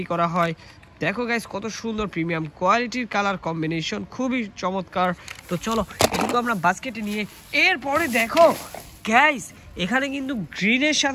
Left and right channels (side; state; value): both; identical; correlation 1.00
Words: করা হয়। দেখো গাইস, কত সুন্দর প্রিমিয়াম কোয়ালিটির কালার কম্বিনেশন, খুবই চমৎকার। তো চলো এটুকু আমরা বাস্কেটে নিয়ে এরপরে দেখো গাইস, এখানে কিন্তু গ্রিনের